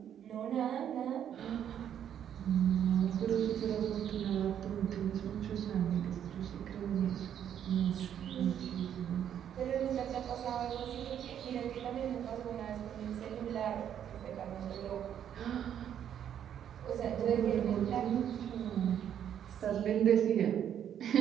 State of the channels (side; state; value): left; quieter; 9.5 dB